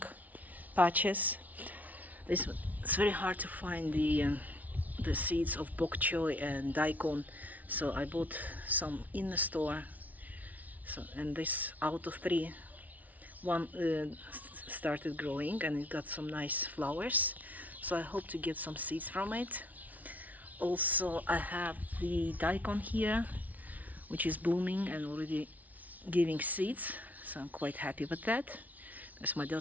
patches. It's very hard to find the seeds of bok choy and daikon, so I bought some in the store. So, and this out of three, one started growing and it got some nice flowers, so I hope to get some seeds from it. Also, I have the daikon here, which is blooming and already giving seeds, so I'm quite happy with that, because my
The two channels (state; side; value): late; left; 0.074 ms